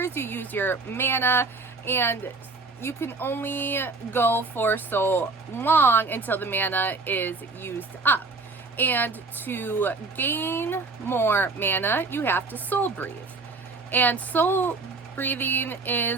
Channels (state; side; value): quieter; left; 3.8 dB